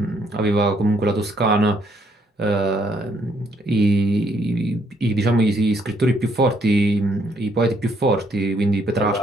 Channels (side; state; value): both; normal; correlation 0.70